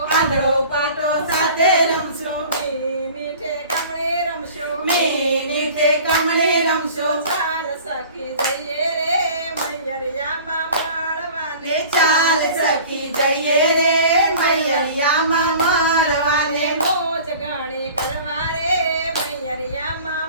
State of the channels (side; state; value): both; inverted; correlation -0.44